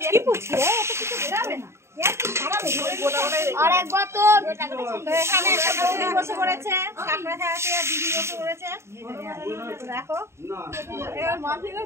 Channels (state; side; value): late; left; 0.13 ms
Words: আরেকবার তো এখানে একটা দিদি বসে পড়েছে, কাঁকড়া খাওয়াতে, আর দিদি বসে পড়েছে। দেখো